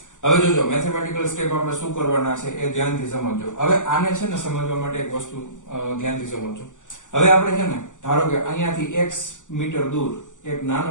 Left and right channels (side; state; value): right; late; 0.86 ms